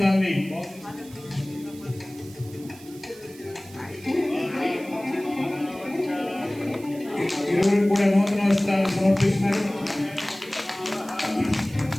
ఇరువురికి కూడా నూతన వస్త్రాలను సమర్పిస్తున్నారు.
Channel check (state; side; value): noise; right; hiss, 21 dB below the sound